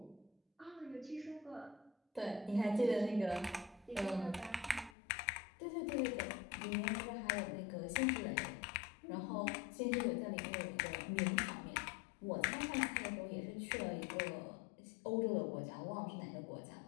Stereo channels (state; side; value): drops out; right; at 5.0 s